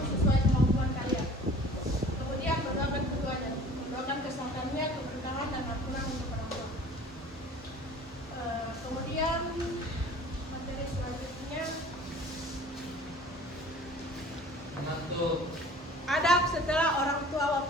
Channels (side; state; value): both; normal; correlation 0.46